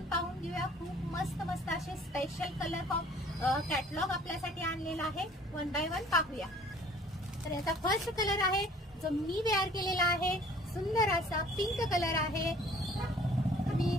पाहून घेऊया. खूप मस्त मस्त असे स्पेशल कलर कॅटलॉग आपल्यासाठी आणलेला आहे. वन बाय वन पाहूया. तर याचा फर्स्ट कलर आहे जो मी वेअर केलेला आहे. सुंदर असा पिंक कलर आहे. मी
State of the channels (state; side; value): normal; both; correlation 0.53